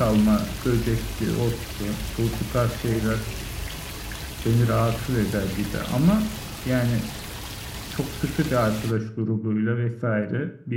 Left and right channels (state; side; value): identical; both; correlation 1.00